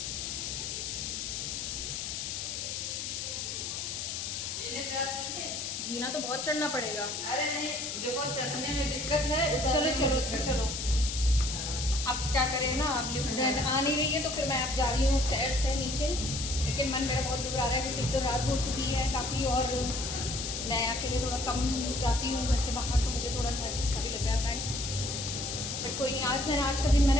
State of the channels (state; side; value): noise; left; hiss, 4 dB below the sound